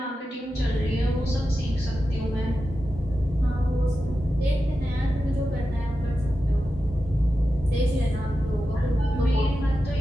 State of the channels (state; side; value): normal; both; correlation 0.91